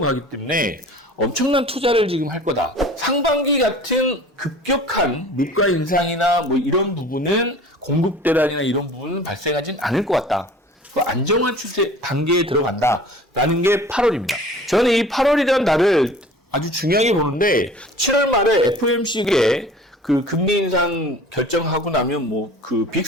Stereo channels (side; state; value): both; normal; correlation 0.44